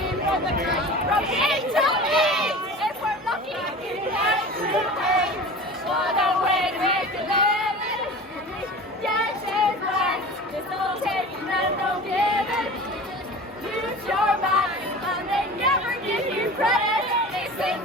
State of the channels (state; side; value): normal; both; correlation 0.36